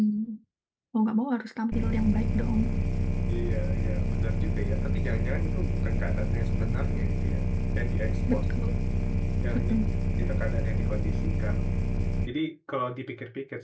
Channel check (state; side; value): identical; both; correlation 1.00